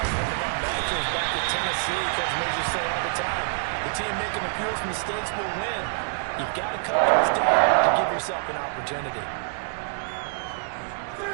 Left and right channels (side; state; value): left; silent; digital silence